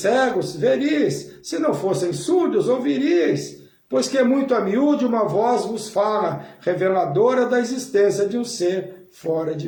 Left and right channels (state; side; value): identical; both; correlation 1.00